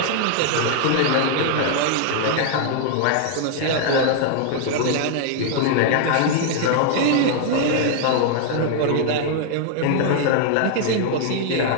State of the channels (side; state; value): both; different; correlation 0.00